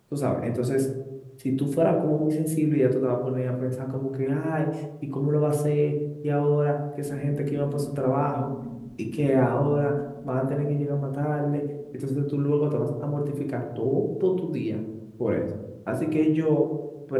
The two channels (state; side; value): identical; both; correlation 1.00